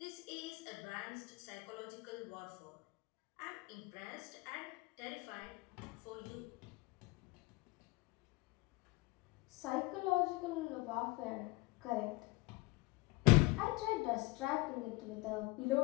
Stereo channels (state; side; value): quieter; right; 23.3 dB